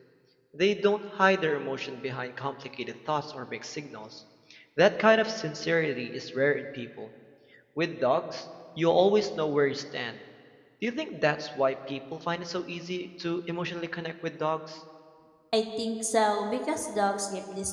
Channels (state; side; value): identical; both; correlation 1.00